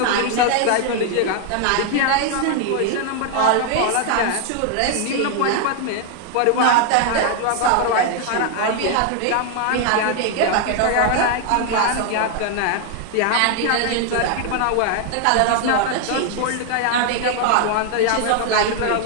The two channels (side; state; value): both; different; correlation 0.00